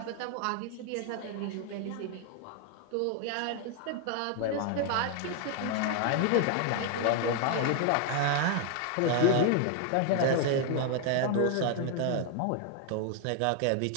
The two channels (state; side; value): different; both; correlation 0.00